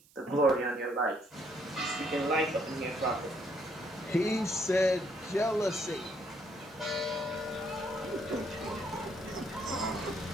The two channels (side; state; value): right; noise; hiss, 28 dB below the sound